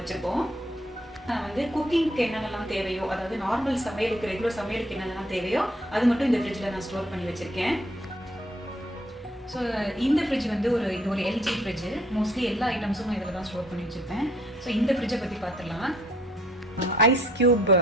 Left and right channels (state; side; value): normal; both; correlation 0.64